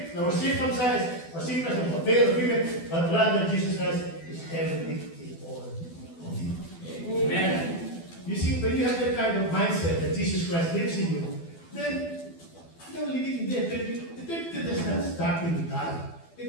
no more circumcised, or circumcised, or male or female, but rather Jesus Christ is everything in all of you. Amen. You see, when you have that kind of mindset that Jesus Christ lives in you, then you know, living in death, eternity does not start when you die.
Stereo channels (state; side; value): late; right; 12 ms